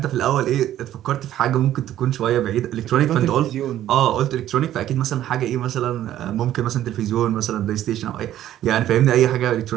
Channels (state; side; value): quieter; left; 12.5 dB